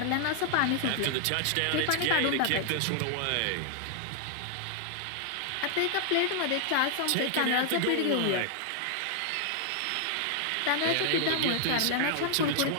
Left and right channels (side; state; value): both; different; correlation 0.00